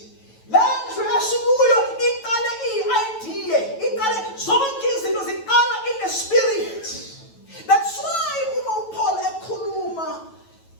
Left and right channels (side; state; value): right; late; 9.1 ms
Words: Lendlu esikuyo iqale i-idea, iqale zonke izinto ziqala in the spirit. That's why uma uPaul ekhuluma